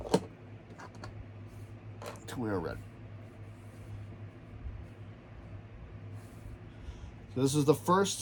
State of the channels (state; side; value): identical; both; correlation 1.00